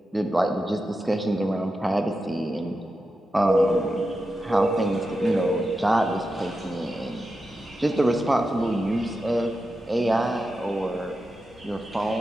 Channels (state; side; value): normal; both; correlation 0.90